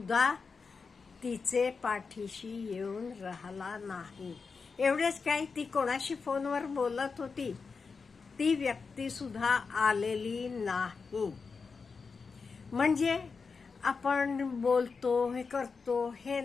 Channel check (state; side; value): quieter; right; 4.9 dB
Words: तिचे पाठीशी येऊन राहिला नाही. एवढेच काय, ती कोणाशी फोनवर बोलत होती ती व्यक्ती सुद्धा आलेली नाही. म्हणजे आपण बोलतो, हे करतो, हे